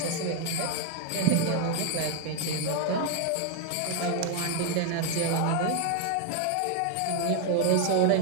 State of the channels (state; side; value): different; both; correlation 0.01